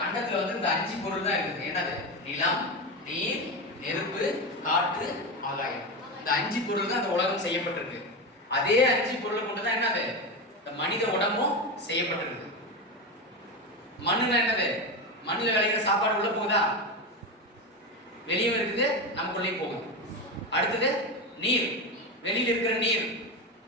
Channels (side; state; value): both; normal; correlation 0.17